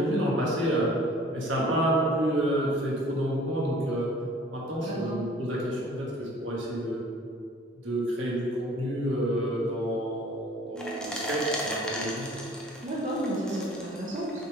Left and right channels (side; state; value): both; normal; correlation 0.51